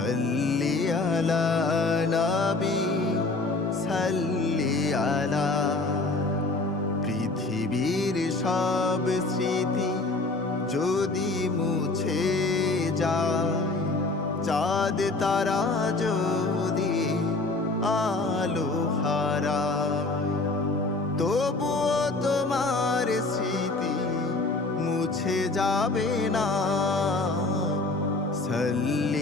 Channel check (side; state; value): right; quieter; 3.3 dB